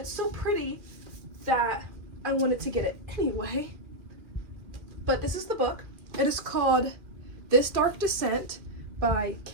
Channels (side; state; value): left; late; 2.3 ms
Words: so pretty that I wanted to get it anyway. But this is the book. It is called This Dark Descent by